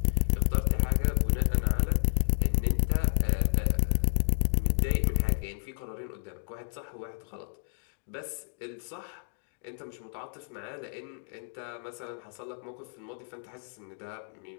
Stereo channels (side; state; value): right; silent; 58 dB below the other